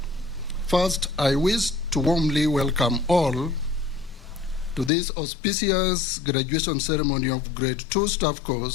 first I wish to warmly welcome all to this auspicious graduation ceremony of Grade 2 Staff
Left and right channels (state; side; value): drops out; right; at 4.9 s